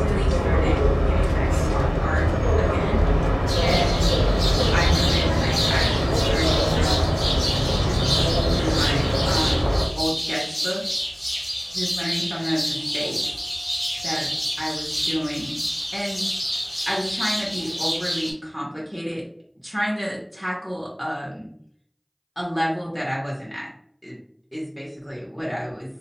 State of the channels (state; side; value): identical; both; correlation 1.00